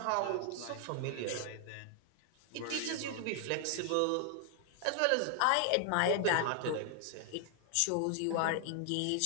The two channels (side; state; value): both; different; correlation 0.00